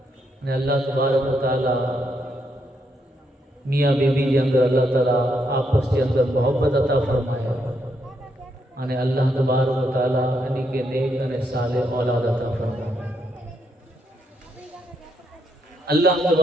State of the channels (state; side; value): normal; both; correlation 0.78